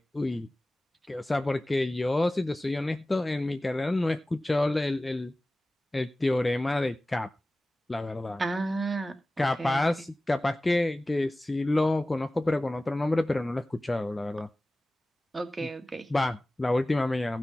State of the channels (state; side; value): normal; both; correlation 0.97